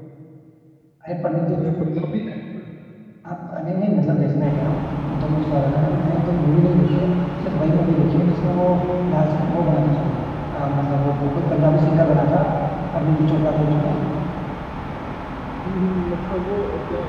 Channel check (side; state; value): both; identical; correlation 1.00